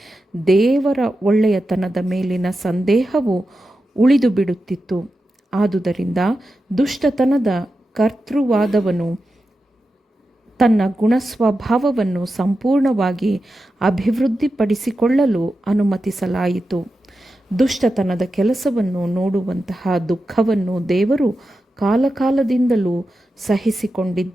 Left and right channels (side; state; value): both; normal; correlation 0.91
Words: ದೇವರ ಒಳ್ಳೆಯತನದ ಮೇಲಿನ ಸಂದೇಹವು ಉಳಿದು ಬಿಡುತ್ತಿತ್ತು. ಆದುದರಿಂದ ದುಷ್ಟತನದ ಕರ್ತೃವಾದವನು ತನ್ನ ಗುಣಸ್ವಭಾವವನ್ನು ಸಂಪೂರ್ಣವಾಗಿ ಅಭಿವೃದ್ಧಿಪಡಿಸಿಕೊಳ್ಳಲು ಅನುಮತಿಸಲಾಯಿತು. ದುಷ್ಟತನದ ಕೆಲಸವನ್ನು ನೋಡುವಂತಹ ದುಃಖವನ್ನು ದೇವರು ಕಾಲಕಾಲದಿಂದಲೂ